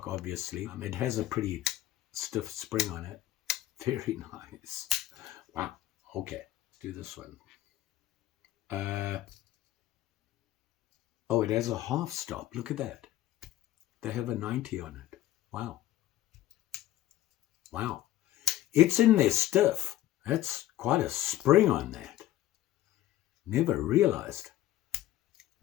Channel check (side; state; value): right; quieter; 14.1 dB